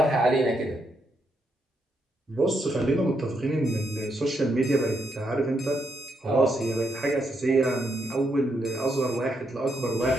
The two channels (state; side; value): normal; both; correlation 0.79